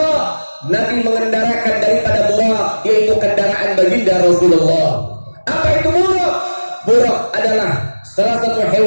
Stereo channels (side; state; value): both; inverted; correlation -1.00